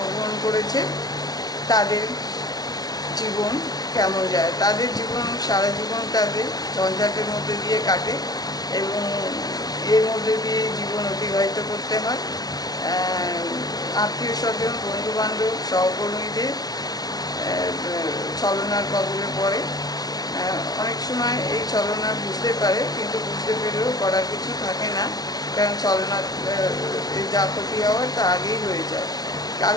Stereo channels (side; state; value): right; late; 0.19 ms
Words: করেছে তাদের জীবন কেমন যায়, তাদের জীবন সারা জীবন তাদের ঝঞ্ঝাটের মধ্যে দিয়ে কাটে এবং এর মধ্যে দিয়ে জীবন অতিবাহিত করতে হয়। আত্মীয় স্বজন, বন্ধুবান্ধব, সহকর্মীদের ছলনার কবলে পড়ে। অনেক সময় এই ছলনা বুঝতে পারে, কিন্তু বুঝতে পেরেও করার কিছু থাকে না, কারণ ছলনা যা ক্ষতি হওয়ার তা আগেই হয়ে যায়।